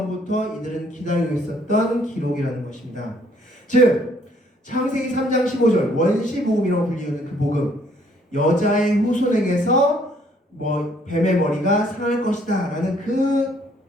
이들은 기다리고 있었던 기록이라는 것입니다. 즉 창세기 3장 15절 원시복음이라고 불리는 그 복음, 여자의 후손에게서 뱀의 머리가 상할 것이다 라는 그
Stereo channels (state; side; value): normal; both; correlation 0.64